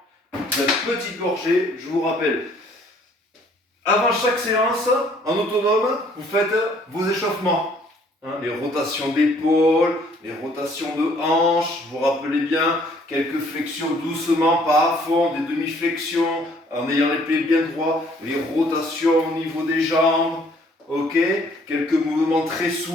Une petite gorgée, je vous rappelle. Avant chaque séance, en autonome, vous faites vos échauffements. Hein, les rotations d'épaule, les rotations de hanches, vous vous rappelez bien, quelques flexions doucement, pas à fond, des demi-flexions, en ayant les pieds bien droits, les rotations au niveau des jambes, ok, quelques mouvements très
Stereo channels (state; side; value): normal; both; correlation 0.61